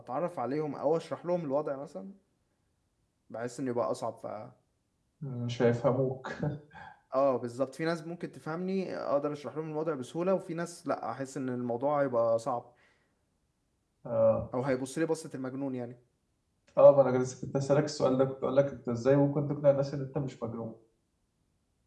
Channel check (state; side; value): identical; both; correlation 1.00